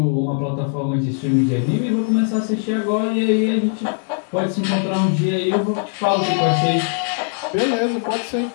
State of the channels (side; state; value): right; silent; 61 dB below the other